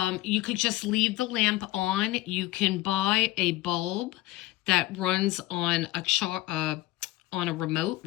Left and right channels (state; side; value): quieter; right; 17.8 dB